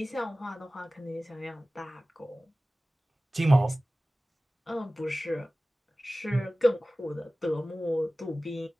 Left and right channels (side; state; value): both; normal; correlation 0.97